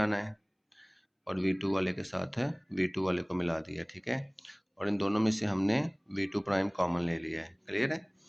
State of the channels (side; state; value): both; identical; correlation 1.00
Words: है और V2 वाले के साथ V2 वाले को मिला दिया, ठीक है। और इन दोनों में से हमने V2 प्राइम कॉमन ले लिया है, क्लियर है।